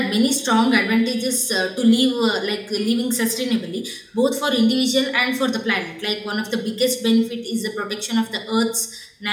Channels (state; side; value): identical; both; correlation 1.00